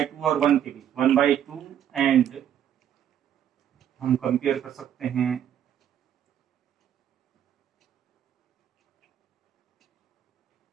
और 1 के बीच, 1/2 एंड हम कंपेयर कर सकते हैं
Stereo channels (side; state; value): left; quieter; 9.9 dB